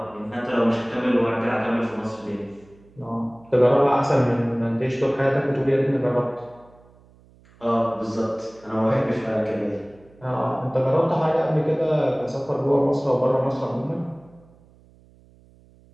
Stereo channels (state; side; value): noise; right; hum, 28 dB below the sound